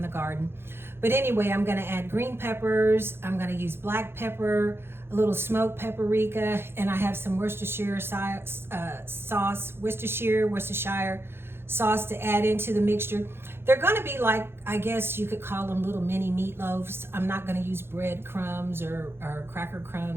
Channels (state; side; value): late; left; 0.11 ms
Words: the garden. But anyway, I'm gonna add green peppers. I'm gonna use black pepper, a little smoked paprika, and I have some Worcestershire sauce, Worcestershire sauce to add into the mixture. They're gonna be like, I guess you could call them little mini meatloaves. I'm not gonna use bread crumbs or cracker